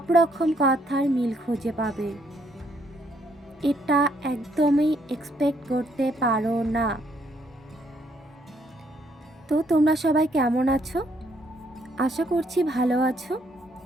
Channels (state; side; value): normal; both; correlation 0.70